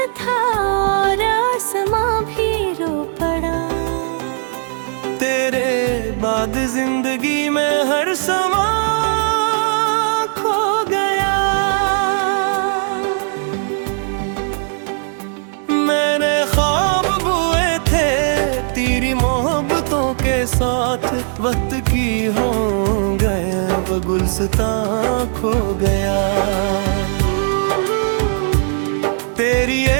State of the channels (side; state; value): left; silent; 57 dB below the other